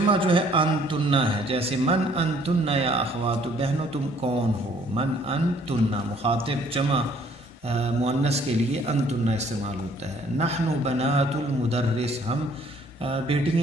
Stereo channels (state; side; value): normal; both; correlation 0.60